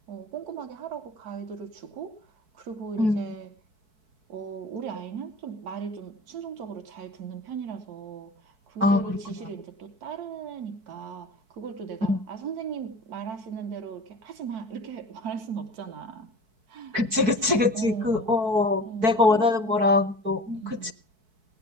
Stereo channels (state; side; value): late; left; 4.6 ms